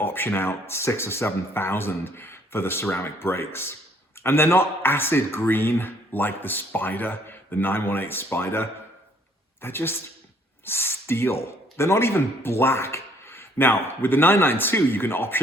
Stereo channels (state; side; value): normal; both; correlation 0.62